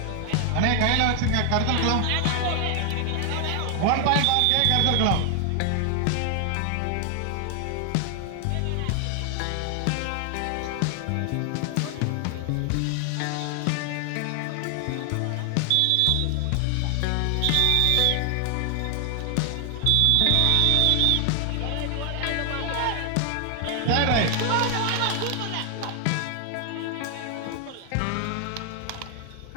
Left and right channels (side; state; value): both; different; correlation 0.00